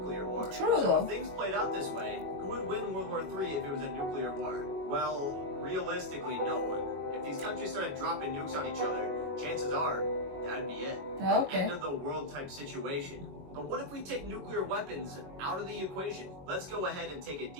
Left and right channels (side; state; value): left; late; 22 ms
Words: war. True, so though. if things played out this way, who would win World War III if it was a nuclear war? Well, realistically, no one. If these countries started dropping nukes on each other, chances are that'd be it. Okay. End of the world type situation. But what if we take nuclear weapons out of the equation? Let's go ahead and take a